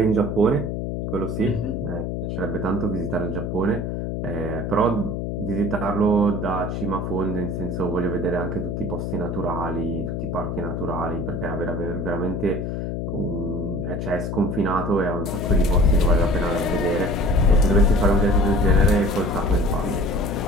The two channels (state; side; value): noise; left; hum, 3 dB below the sound